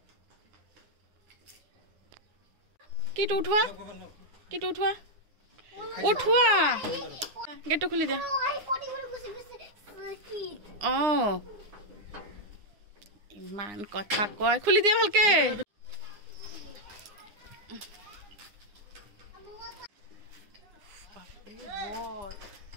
কিটো উঠোৱা উঠোৱা গেটটো খুলি দিয়া ইমান কথা কয় খুলি দিয়া ভালকে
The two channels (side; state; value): left; late; 9.7 ms